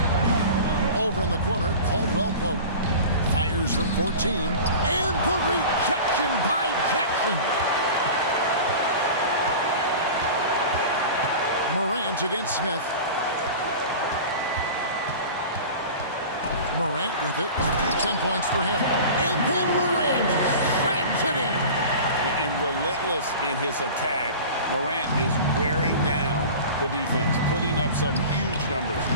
Over in the corner, Caldwell Pope fires from 14. And the rejection by Jackson. Morant against Smith. Morant with it. 10 points for him. And then Morant slams it in. And relentless in his attack, Morant is wearing down the defense, putting up some huge numbers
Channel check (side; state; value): both; inverted; correlation -0.36